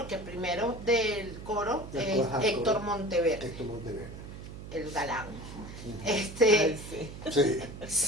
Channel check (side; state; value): right; noise; hum, 12 dB below the sound